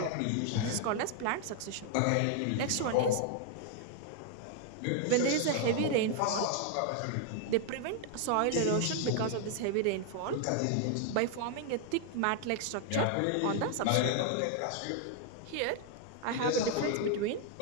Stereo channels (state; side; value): different; both; correlation 0.00